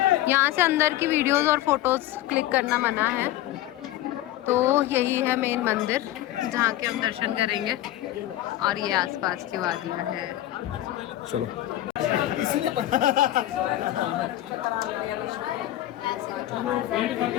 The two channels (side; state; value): right; quieter; 14.3 dB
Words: यहाँ से अंदर की वीडियोस और फोटोज क्लिक करना मना है। तो यही है मेन मंदिर जहाँ के हम दर्शन करेंगे और ये आसपास की वादियाँ हैं। चलो